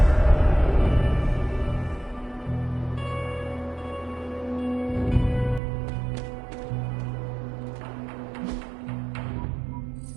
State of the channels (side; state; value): left; drops out; at 5.6 s